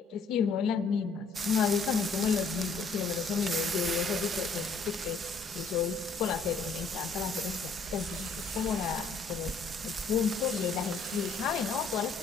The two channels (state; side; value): quieter; right; 4.2 dB